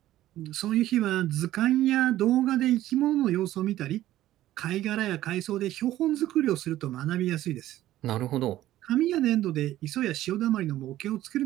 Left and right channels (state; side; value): quieter; left; 14.2 dB